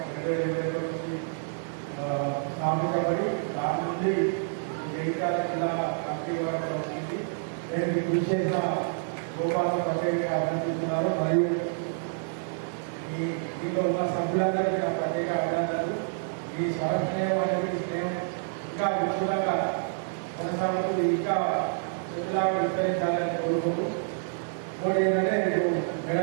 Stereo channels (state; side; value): silent; left; 59 dB below the other